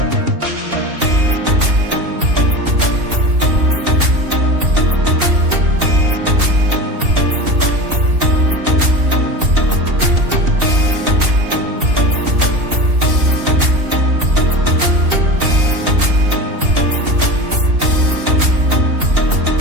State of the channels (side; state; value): left; late; 2.7 ms